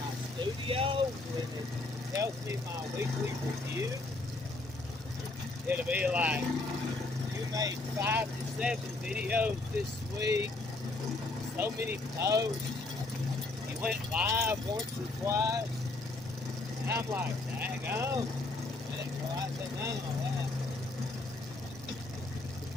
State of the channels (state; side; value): quieter; right; 3.1 dB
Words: my studio, when it tells me my weekly review, it'll be like, you made 5 to 7 videos this week, so many posts, you went live once or twice, and I'm like, dang on, I didn't realize that none of that.